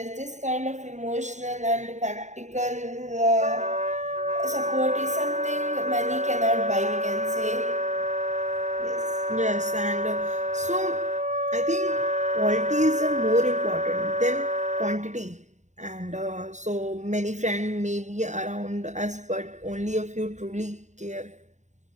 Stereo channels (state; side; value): late; left; 0.34 ms